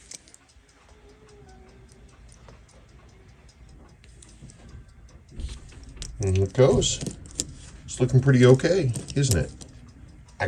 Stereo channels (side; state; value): both; identical; correlation 1.00